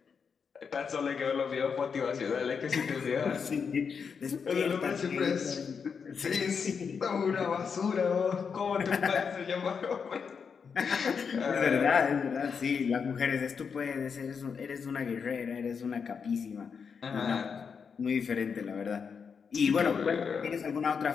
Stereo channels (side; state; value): right; quieter; 6.1 dB